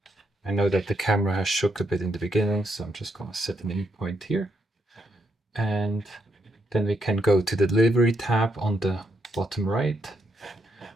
I know that the camera has shook a bit in the beginning, so I'm just going to set an in point here. And then we can go to the Delivery tab on the bottom right.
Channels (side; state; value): both; normal; correlation 0.78